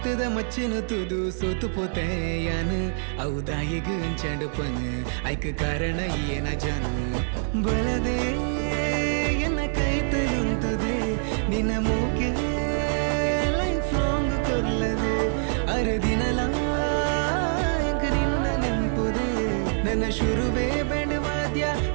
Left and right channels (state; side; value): silent; left; digital silence